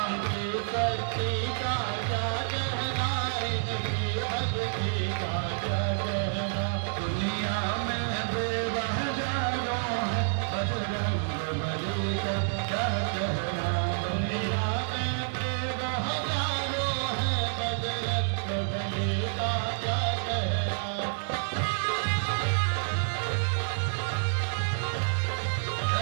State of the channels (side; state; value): left; silent; digital silence